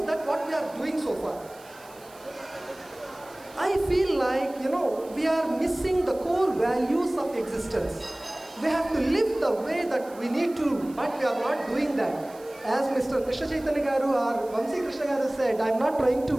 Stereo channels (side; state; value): right; noise; hiss, 24 dB below the sound